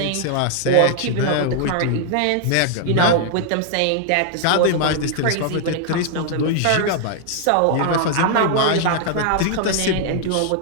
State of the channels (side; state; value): both; different; correlation 0.00